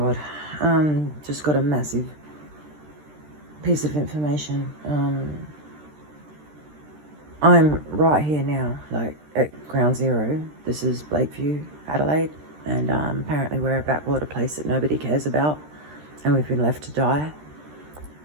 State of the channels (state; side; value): late; left; 13 ms